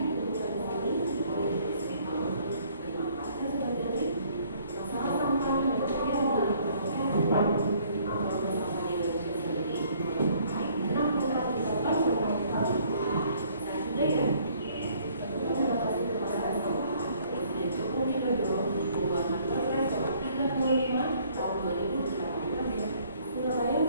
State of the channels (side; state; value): both; inverted; correlation -0.61